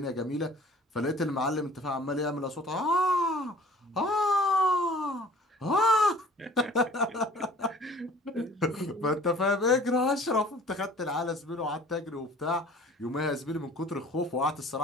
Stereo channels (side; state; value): both; normal; correlation 0.50